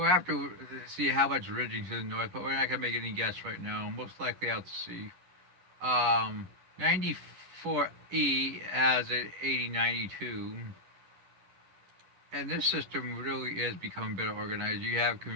have to see how much ridging to the north, but we're not gonna make any guess right now. Most likely out to sea. 94E has an 8092. And this system really is becoming better organized. You have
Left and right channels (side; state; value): left; late; 11 ms